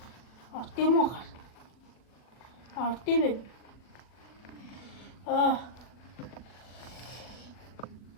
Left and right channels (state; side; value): late; right; 40 ms